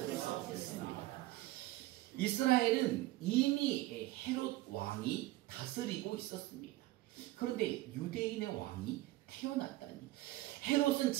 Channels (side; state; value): left; quieter; 17.7 dB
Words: 이스라엘은 이미 헤롯 왕이 다스리고 있었습니다. 그런데 유대인의 왕이 태어났다니. 헤롯은